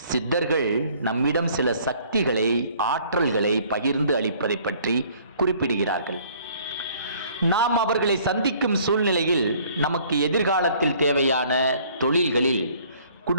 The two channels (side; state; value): both; inverted; correlation -0.58